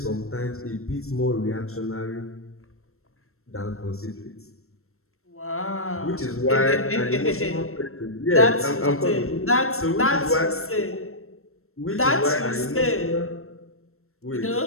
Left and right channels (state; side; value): late; right; 0.63 ms